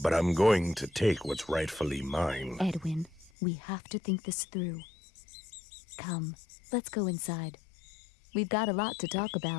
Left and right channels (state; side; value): drops out; right; at 3.3 s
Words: I'm going to take what's rightfully mine. Edwin, we have to think this through. Come, let's go inside. We've got a lot to talk